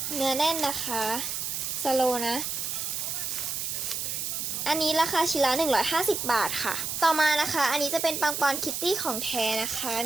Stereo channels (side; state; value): right; noise; hiss, 3 dB below the sound